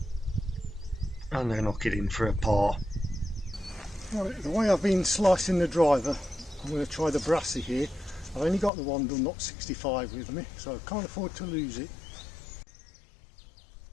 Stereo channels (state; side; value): drops out; right; at 8.7 s